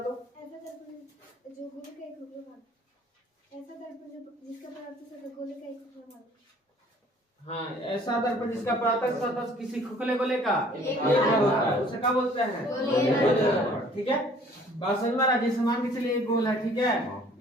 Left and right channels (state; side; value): normal; both; correlation 0.55